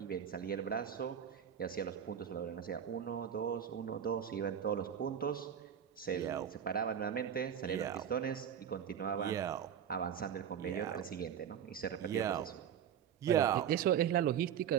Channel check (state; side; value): quieter; left; 8.8 dB